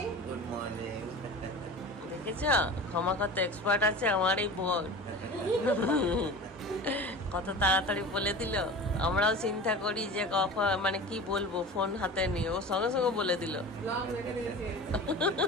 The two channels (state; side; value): normal; both; correlation 0.34